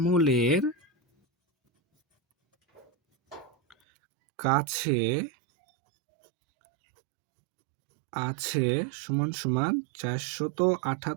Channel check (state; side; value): drops out; left; at 3.8 s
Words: কাছে আছে সমান সমান